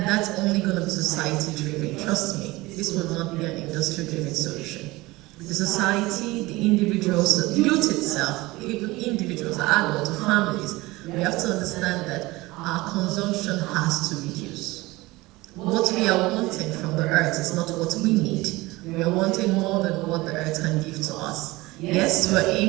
that's only going to be society-driven, trust me. This will not be an industry-driven solution. The society, the individuals, the youth itself, even individuals, adults, families, we have to understand that our consumption has to reduce. What we are wanting from the earth is not what we need. We are wanting more than what the earth can give to us. Yes, we're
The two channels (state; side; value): quieter; left; 20.7 dB